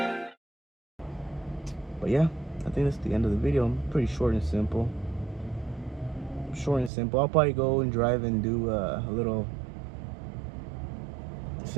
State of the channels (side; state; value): left; drops out; at 6.9 s